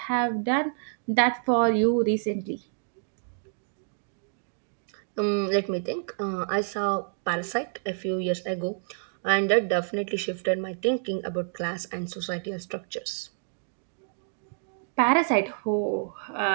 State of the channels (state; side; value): silent; left; digital silence